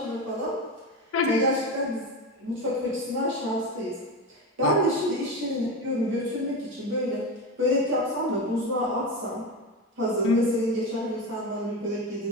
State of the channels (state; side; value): normal; both; correlation 0.20